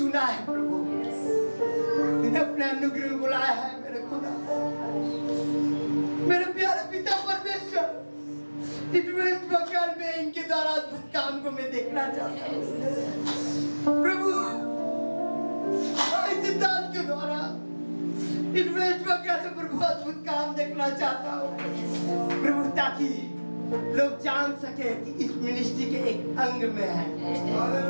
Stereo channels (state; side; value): inverted; both; correlation -1.00